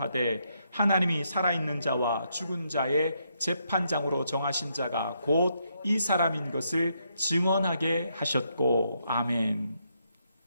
하나님이 살아있는 자와 죽은 자의 재판장으로 정하신 자가 곧 이 사람인 것을 증언하게 하셨고. 아멘.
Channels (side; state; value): both; inverted; correlation -0.77